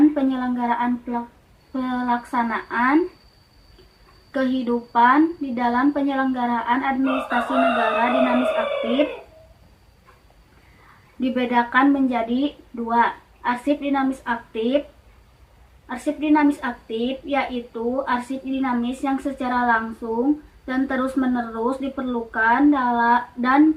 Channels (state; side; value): identical; both; correlation 1.00